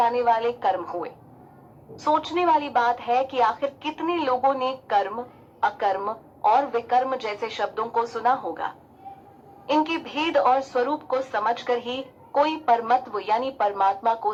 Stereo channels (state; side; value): identical; both; correlation 1.00